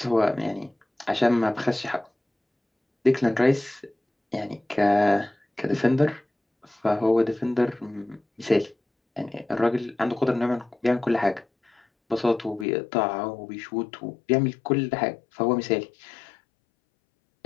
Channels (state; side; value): drops out; right; at 12.7 s